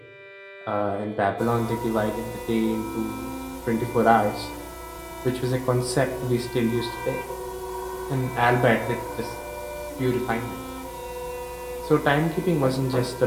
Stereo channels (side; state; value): both; identical; correlation 1.00